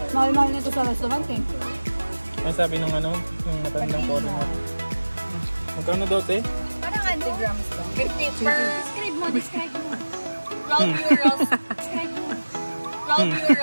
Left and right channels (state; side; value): inverted; both; correlation -1.00